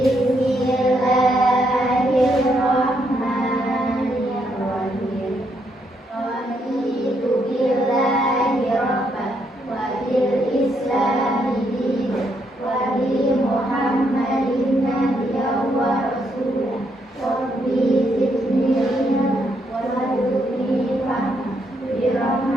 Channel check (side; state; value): both; normal; correlation 0.76